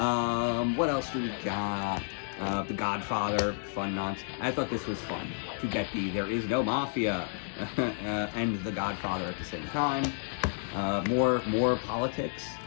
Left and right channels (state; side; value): silent; right; digital silence